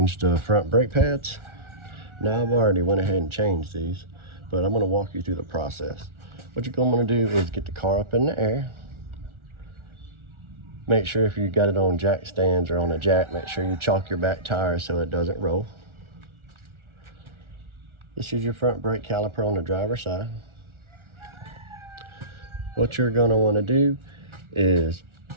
the front brake pads. Now I've already went ahead and changed these, but I'm going to walk you through the process. What you're going to want to do is get the car up in the air. Make sure if you got it on jack stands or on a jack, make sure you chalk your back tire so it doesn't roll. This is your front brake caliper on the driver's side. What you're going to want to do is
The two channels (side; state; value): left; late; 1.4 ms